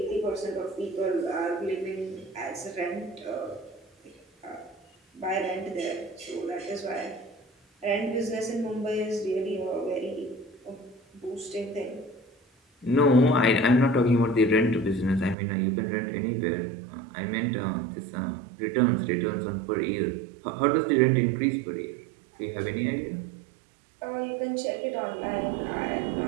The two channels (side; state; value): left; drops out; at 15.4 s